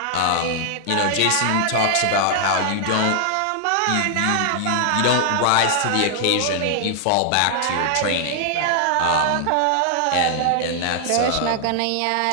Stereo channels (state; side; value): different; both; correlation 0.00